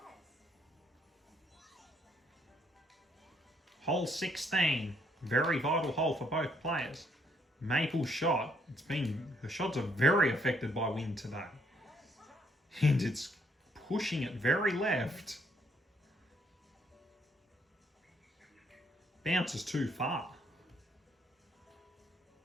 Hole 16. Very vital hole for both players. Maple's shot. Her shots are very affected by wind today. And it's pushing it very left. Bounces too far.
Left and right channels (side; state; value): both; normal; correlation 0.70